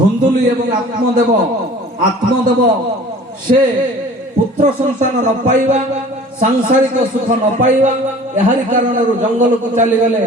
एवं आत्मदेव से पुत्र संतान न पाइबा सांसारिक सुख न पाइबा एहारी कारण जंगल को चली गले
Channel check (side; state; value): both; normal; correlation 0.46